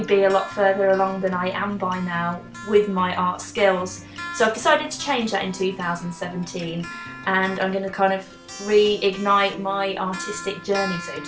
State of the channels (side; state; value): both; identical; correlation 1.00